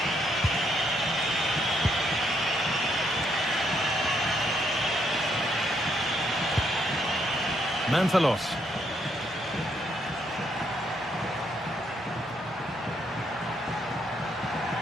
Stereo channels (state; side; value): normal; both; correlation 0.74